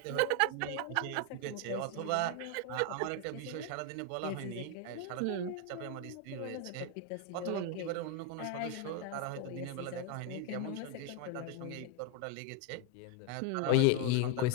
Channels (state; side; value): different; both; correlation 0.01